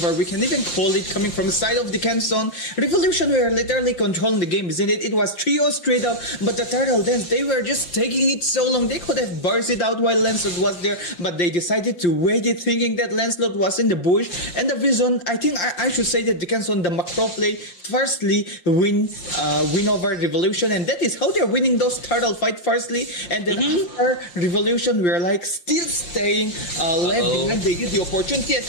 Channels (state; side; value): late; right; 5.7 ms